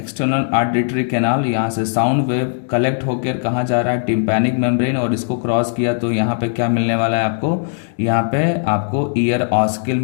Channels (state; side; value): silent; right; digital silence